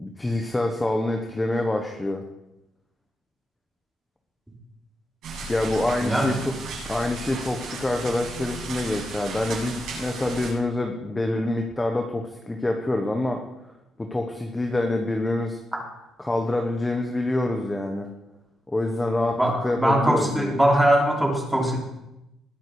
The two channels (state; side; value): normal; both; correlation 0.88